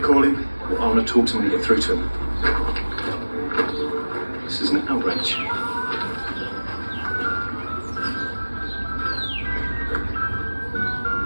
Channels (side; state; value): both; inverted; correlation -1.00